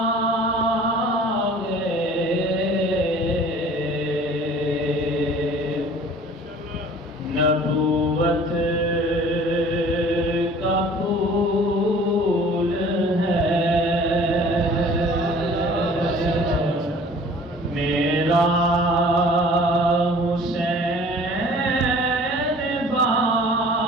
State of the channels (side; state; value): both; normal; correlation 0.49